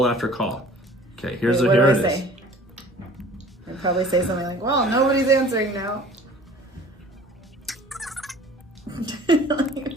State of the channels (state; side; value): normal; both; correlation 0.48